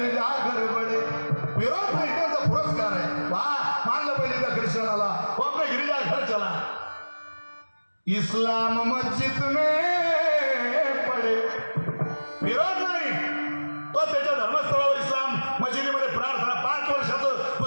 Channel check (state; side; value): inverted; both; correlation -1.00